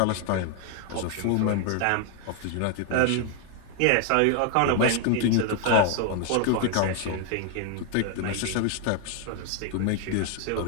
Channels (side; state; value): both; different; correlation 0.00